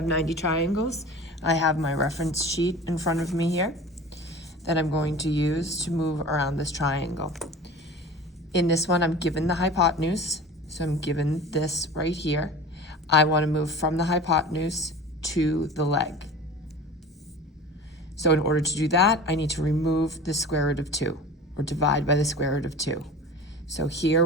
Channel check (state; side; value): normal; both; correlation 0.37